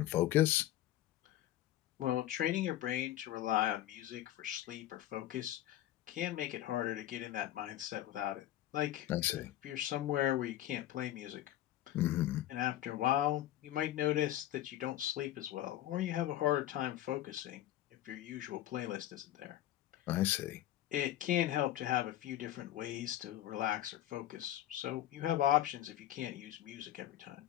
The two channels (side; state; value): right; quieter; 13.3 dB